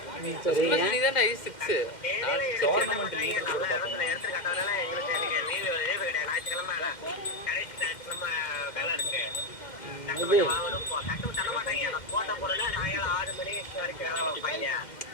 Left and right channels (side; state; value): right; late; 2.1 ms